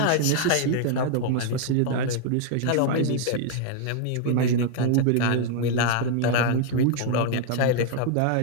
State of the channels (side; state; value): both; different; correlation 0.00